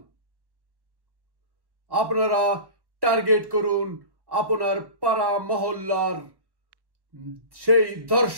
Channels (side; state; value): left; late; 1.1 ms